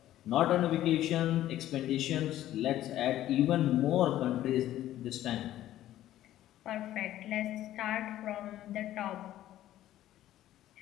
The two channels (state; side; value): quieter; right; 13.4 dB